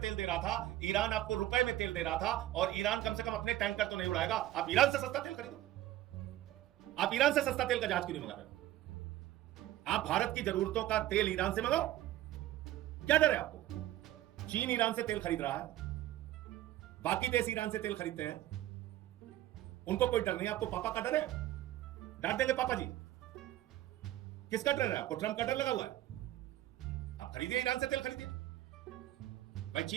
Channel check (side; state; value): left; quieter; 14.4 dB